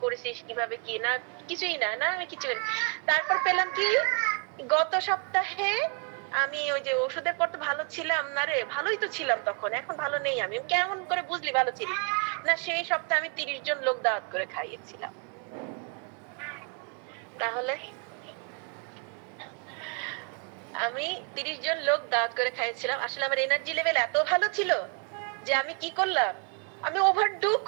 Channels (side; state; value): left; quieter; 38.9 dB